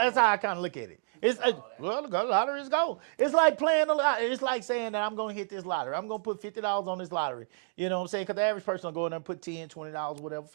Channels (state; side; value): silent; left; digital silence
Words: a goal. how I kind of look at it. It's the lottery is gold. It's like playing the lottery. It's like saying that I'm going to hit this lottery. I'm going to put $50 on this lottery. You know what I'm saying? Because the average person will go in there and put $10, $20, whatever,